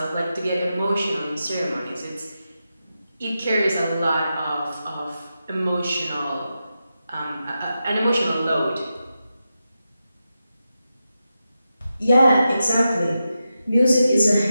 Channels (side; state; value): both; inverted; correlation -0.89